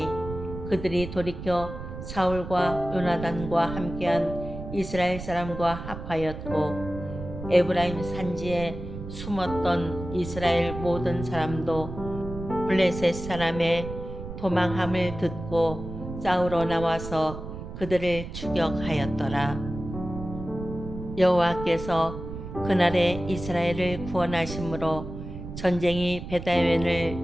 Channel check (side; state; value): right; noise; rumble, 9 dB below the sound